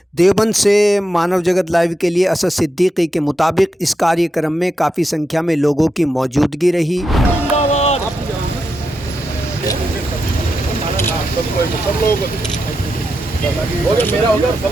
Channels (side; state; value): both; normal; correlation 0.86